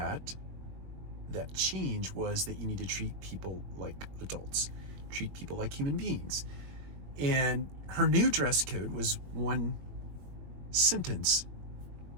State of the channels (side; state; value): left; late; 21 ms